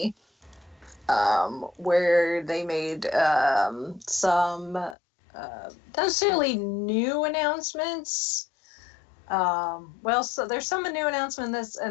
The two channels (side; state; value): right; drops out; at 5.0 s